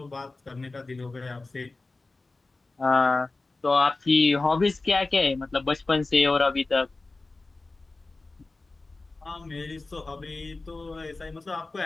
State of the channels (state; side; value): quieter; right; 3.4 dB